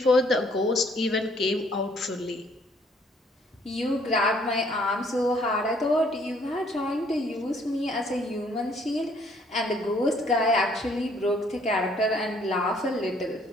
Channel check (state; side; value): normal; both; correlation 0.63